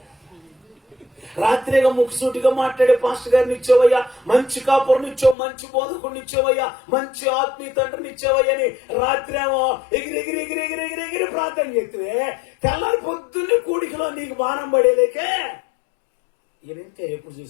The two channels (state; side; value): drops out; right; at 5.4 s